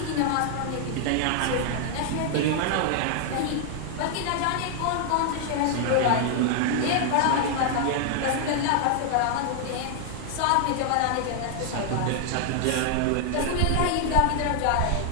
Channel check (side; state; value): both; different; correlation 0.00